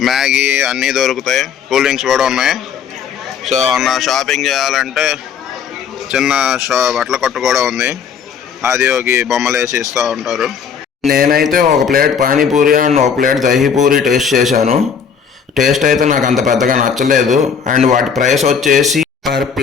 మ్యాగీ అన్నీ దొరుకుతాయి. కూల్ డ్రింక్స్ కూడా ఉన్నాయి. సో షాపింగ్ చేయాలంటే చిన్న బట్టల కొట్టు కూడా ఉంది. ఆదియోగి బొమ్మలు వేసి ఇస్తూ ఉంటారు. నేనైతే ఒక ప్లేట్ పానీపూరి అండ్ ఒక ప్లేట్ దహీపూరి టేస్ట్ చేశాను. టేస్ట్ అయితే నాకు అంత పెద్దగా నచ్చలేదు. అండ్ వాటి ప్రైస్ వచ్చేసి పర్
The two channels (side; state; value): right; quieter; 6.9 dB